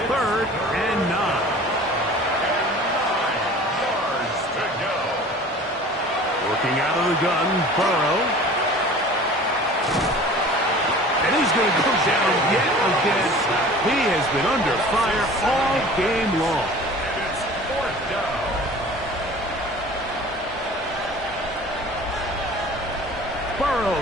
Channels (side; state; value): both; normal; correlation 0.43